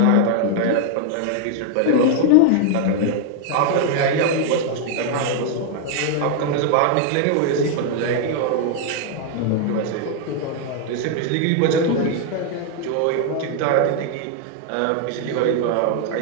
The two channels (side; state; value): both; different; correlation 0.00